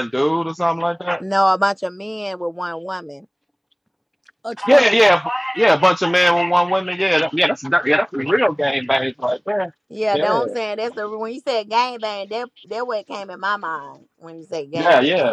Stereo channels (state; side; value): identical; both; correlation 1.00